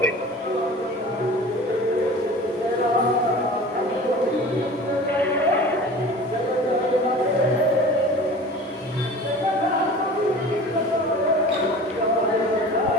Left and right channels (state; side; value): normal; both; correlation 0.39